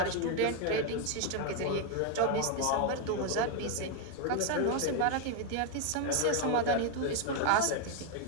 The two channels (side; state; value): both; different; correlation 0.01